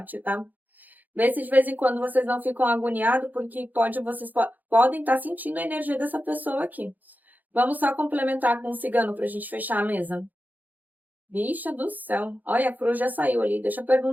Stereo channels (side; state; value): left; late; 0.083 ms